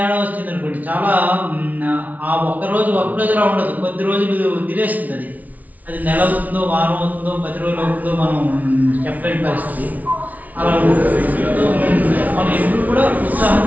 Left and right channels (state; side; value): late; left; 0.074 ms